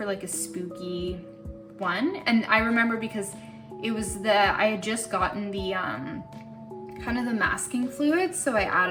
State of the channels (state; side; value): identical; both; correlation 1.00